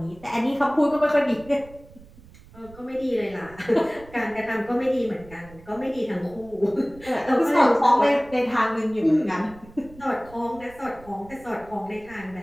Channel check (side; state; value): right; noise; rumble, 22 dB below the sound